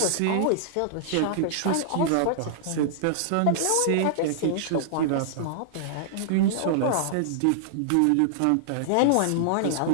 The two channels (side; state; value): both; different; correlation -0.01